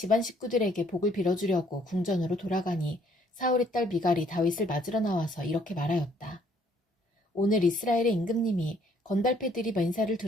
식구들에게 복을 빌어주려고 궁전으로 돌아가니 사울의 딸 미갈이 다윗을 맞으러 나와서 이렇게 말하였다. 오늘 이스라엘의 임금님이 건달패들이 맨살을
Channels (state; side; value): normal; both; correlation 0.64